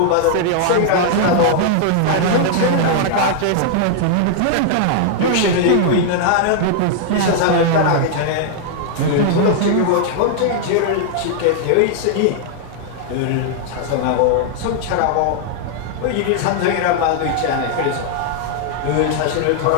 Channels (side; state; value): both; different; correlation -0.01